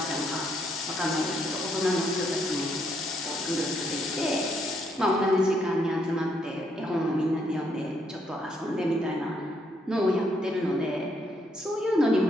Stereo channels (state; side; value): normal; both; correlation 0.73